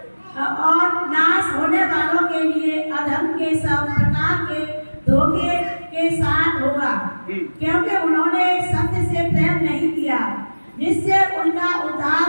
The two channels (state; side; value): inverted; both; correlation -1.00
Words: और नाश होने वालों के लिए अधर्म के सब प्रकार के धोखे के साथ होगा, क्योंकि उन्होंने सत्य से प्रेम नहीं किया जिससे उनका